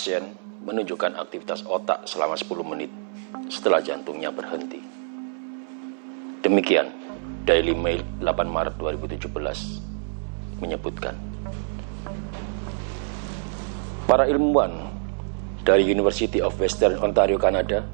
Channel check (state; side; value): silent; left; 61 dB below the other